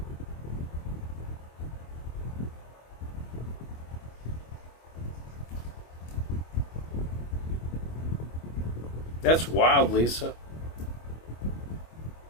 That's wild, Lisa.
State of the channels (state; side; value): late; right; 25 ms